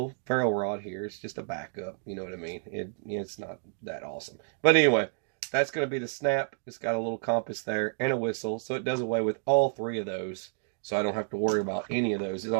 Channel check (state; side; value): silent; left; 58 dB below the other